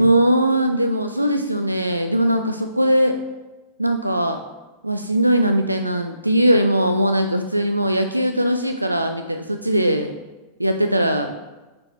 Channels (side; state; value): both; inverted; correlation -0.80